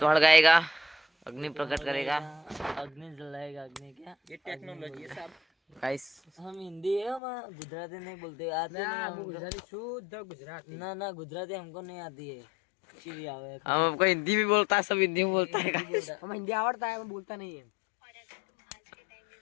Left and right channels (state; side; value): drops out; right; at 7.2 s